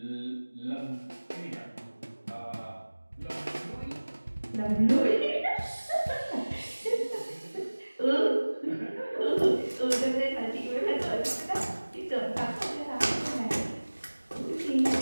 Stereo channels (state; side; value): inverted; both; correlation -1.00